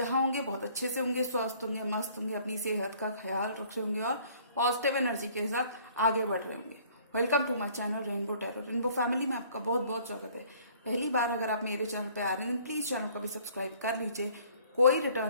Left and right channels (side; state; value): both; inverted; correlation -0.57